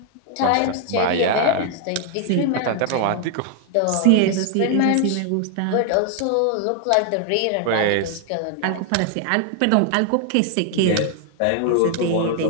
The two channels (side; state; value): both; different; correlation 0.00